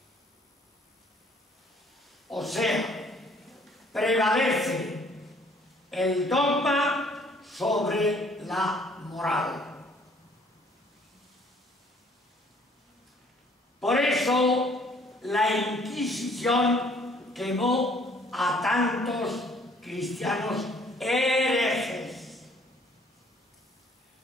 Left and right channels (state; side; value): normal; both; correlation 0.60